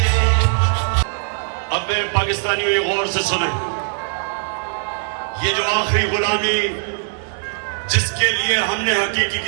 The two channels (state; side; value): silent; left; digital silence